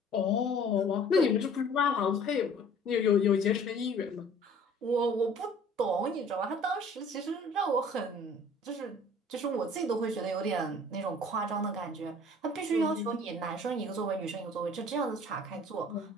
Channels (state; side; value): normal; both; correlation 0.51